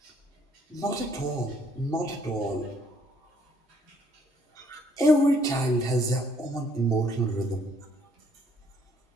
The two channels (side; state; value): both; normal; correlation 0.65